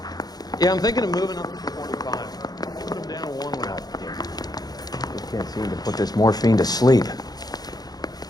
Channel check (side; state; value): right; late; 0.19 ms